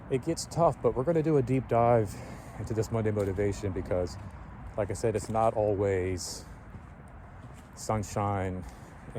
tough, but we're going to do a deep dive into this Monday motivation because, like I said, it's not always sunshine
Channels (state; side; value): identical; both; correlation 1.00